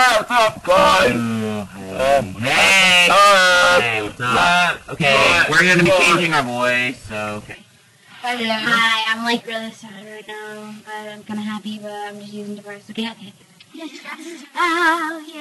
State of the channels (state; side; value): identical; both; correlation 1.00